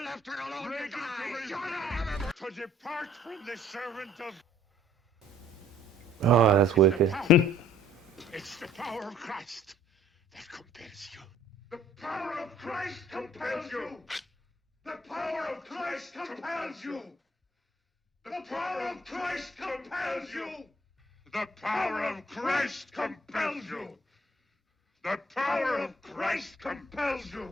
left her alone to Reagan die! to depart from the servant of... Oh, that's wicked. It's the power of Christ that compels you. The power of Christ compels you. The power of Christ compels you. The power of Christ compels you. The power of Christ compels you. The power of Christ compels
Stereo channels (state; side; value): normal; both; correlation 0.58